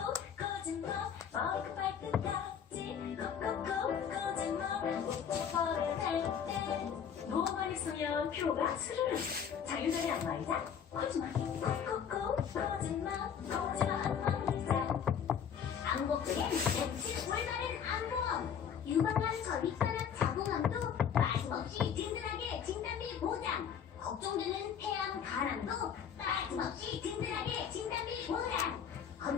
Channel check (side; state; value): right; quieter; 7.9 dB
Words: 거짓말 머리가 발끝까지 콕콕콕 거짓말 목적버릇 할때 너무 많이 쓰면 표가 스르르 자유자재 안마의자 거짓말 콕콕콕 거짓말 거짓말 안마의자 안곡동엔 MC 올바른 안보험, 유방암 전립선암 자궁암도 빠짐없이 든든하게 진단비 보장, 걱정되는 폐암 간암도 빠짐없이 든든하게 진단비 보장.